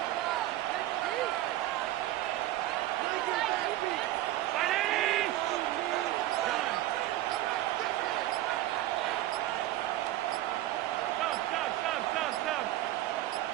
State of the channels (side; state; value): left; quieter; 15.1 dB